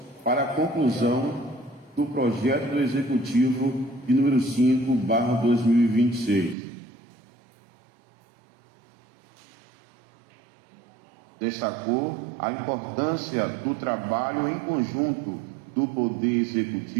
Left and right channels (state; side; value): drops out; left; at 6.6 s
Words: para a conclusão do projeto do Executivo de número 5/2026. Destacou a importância do trabalho em conjunto do Poder